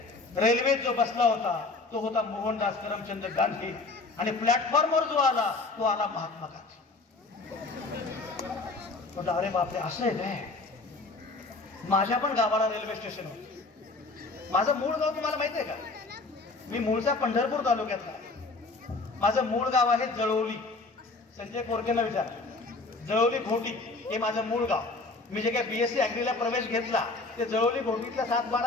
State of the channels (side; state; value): right; quieter; 3.6 dB